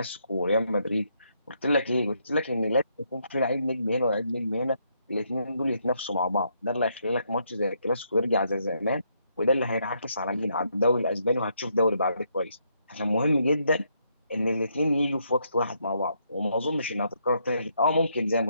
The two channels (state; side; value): inverted; both; correlation -0.75